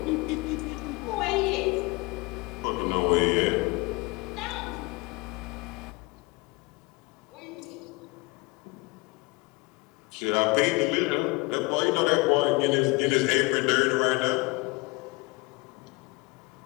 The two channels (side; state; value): right; quieter; 25.8 dB